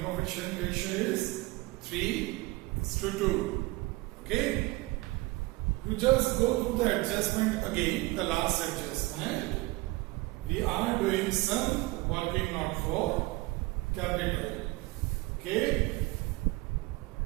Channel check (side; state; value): left; quieter; 22.0 dB